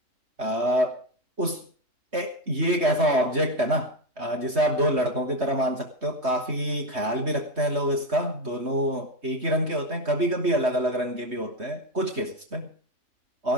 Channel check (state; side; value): late; left; 3.2 ms